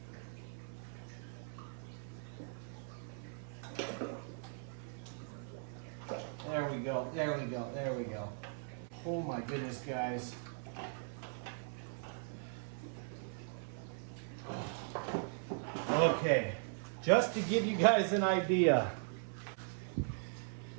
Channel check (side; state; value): left; silent; 52 dB below the other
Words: There we go, there we go, there we go. Oh my goodness, guys. Okay, just to give you guys an idea,